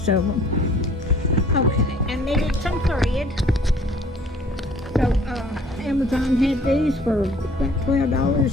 of them. Okay, I needed some thread. So Amazon had these for about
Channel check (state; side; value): normal; both; correlation 0.54